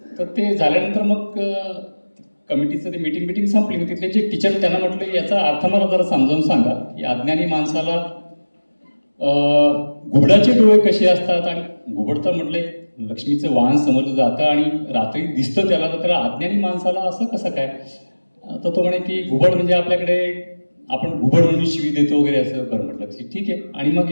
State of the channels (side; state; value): both; inverted; correlation -1.00